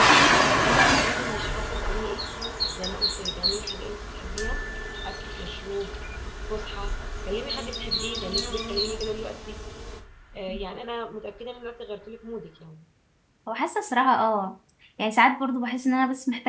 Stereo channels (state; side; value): identical; both; correlation 1.00